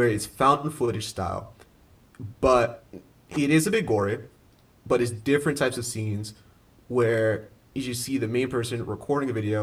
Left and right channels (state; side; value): identical; both; correlation 1.00